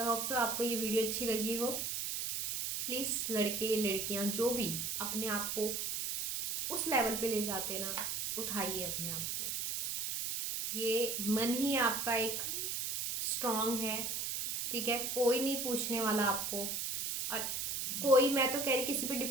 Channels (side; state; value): right; noise; hiss, 2 dB below the sound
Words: होप सो आपको ये वीडियो अच्छी लगी हो। प्लीज़ लड़के लड़कियां जो भी अपने आप को उस लेवल पे ले जाते ना, उठाइए अपने आप को। ये मन ही आपका एक स्ट्रांग है, ठीक है, कोई नहीं पूछने वाला आपको। और कोई, मैं तो कह रही किसी पे